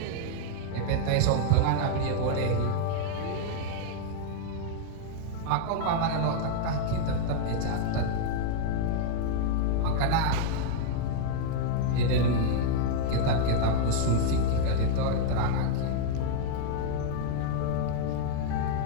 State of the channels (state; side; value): different; both; correlation 0.00